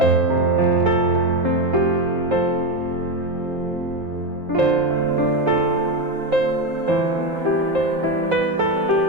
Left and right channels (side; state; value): left; late; 3.7 ms